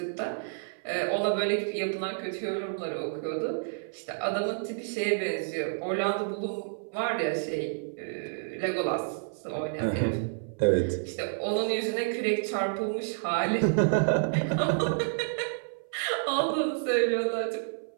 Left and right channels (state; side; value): silent; left; 56 dB below the other